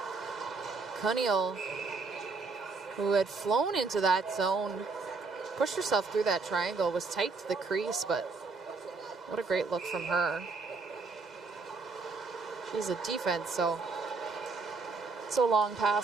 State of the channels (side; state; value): left; quieter; 4.3 dB